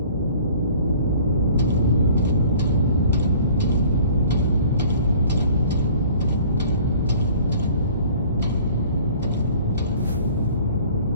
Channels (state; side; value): inverted; both; correlation -0.50